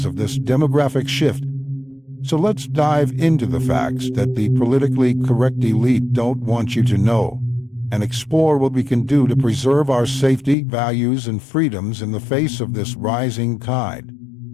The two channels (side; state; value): right; drops out; at 10.6 s